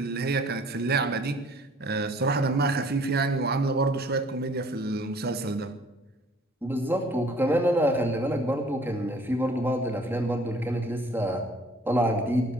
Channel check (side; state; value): both; normal; correlation 0.54